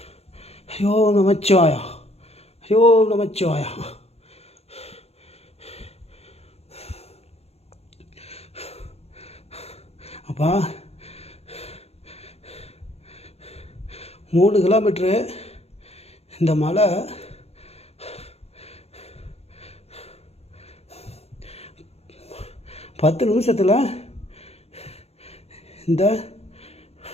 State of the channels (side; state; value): right; late; 0.30 ms